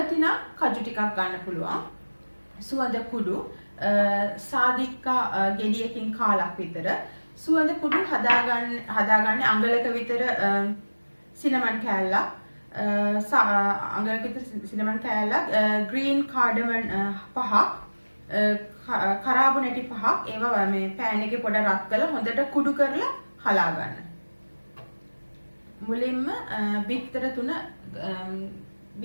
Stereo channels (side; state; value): both; inverted; correlation -1.00